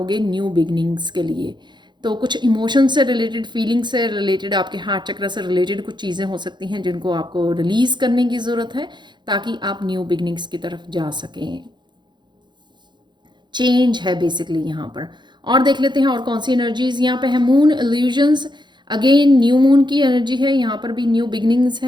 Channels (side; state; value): left; late; 0.22 ms